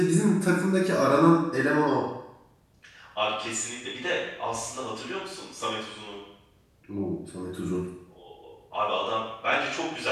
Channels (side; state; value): both; identical; correlation 1.00